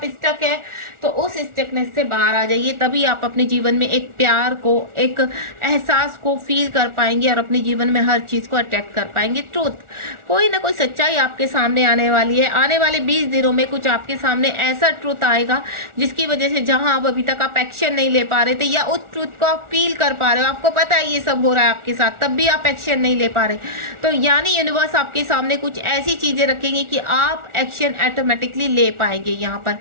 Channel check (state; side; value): late; left; 1.4 ms